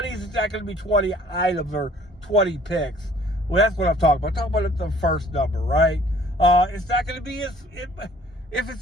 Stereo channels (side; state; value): both; normal; correlation 0.55